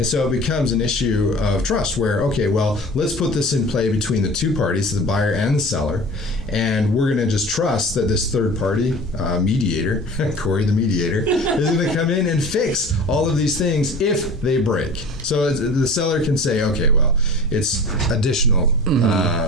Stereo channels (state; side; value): normal; both; correlation 0.40